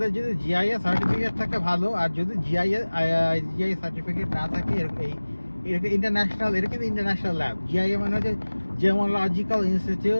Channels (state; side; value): inverted; both; correlation -1.00